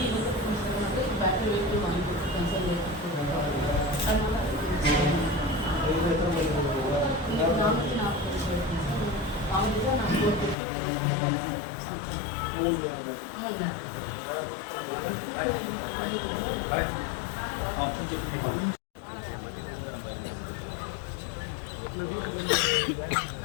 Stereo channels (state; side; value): drops out; right; at 10.6 s